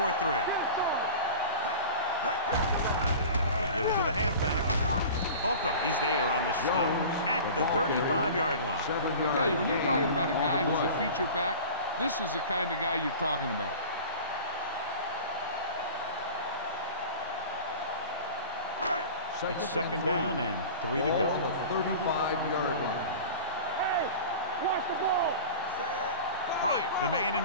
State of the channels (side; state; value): both; inverted; correlation -0.37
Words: They give it to the halfback. Holcomb is there on the stop at the 35-yard line. I'll tell you, when you're talking about a guy who's a feature back, this is the kind of guy you're talking about. It's second down and 3 to Ball go. on the 35-yard line. Hey, watch the ball. Bryant, the man in